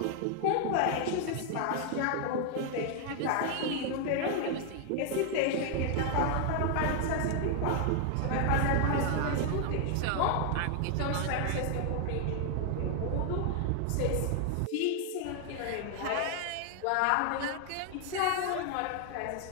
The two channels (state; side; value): different; both; correlation 0.00